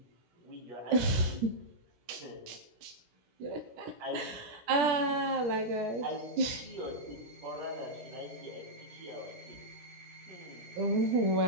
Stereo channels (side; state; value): left; late; 17 ms